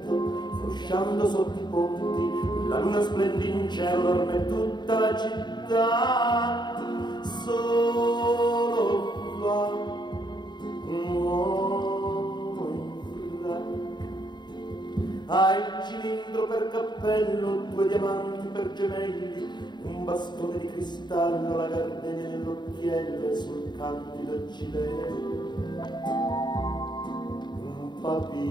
frusciando sotto i ponti, la luna splende in cielo, dorme tutta la città. Solo va un uomo in frac, ha il cilindro per cappello, 2 diamanti per gemelli, un bastone di cristallo, la gardenia nell'occhiello e sul candido gilet un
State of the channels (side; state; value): right; late; 0.21 ms